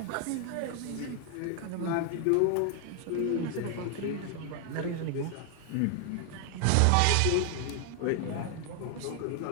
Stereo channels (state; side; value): different; both; correlation 0.00